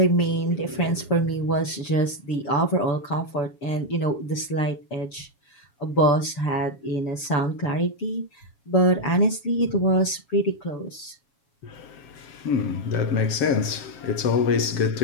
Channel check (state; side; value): late; right; 6.9 ms